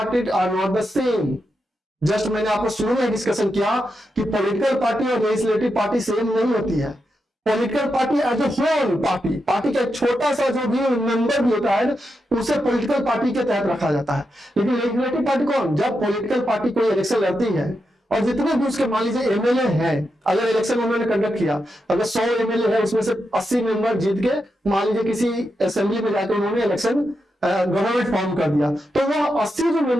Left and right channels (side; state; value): both; normal; correlation 0.86